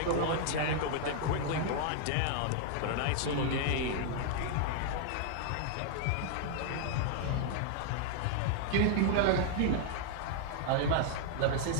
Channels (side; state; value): both; different; correlation -0.01